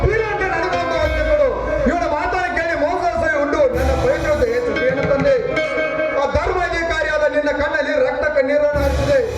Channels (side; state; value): both; identical; correlation 1.00